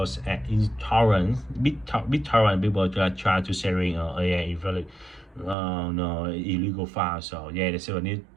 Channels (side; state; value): left; drops out; at 5.6 s